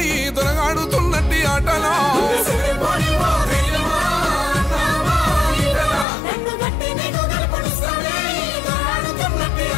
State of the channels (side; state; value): right; drops out; at 6.1 s